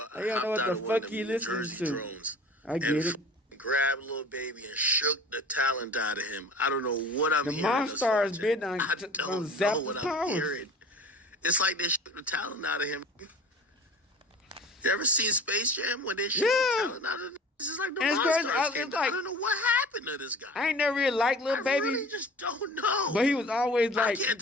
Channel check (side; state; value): both; normal; correlation 0.42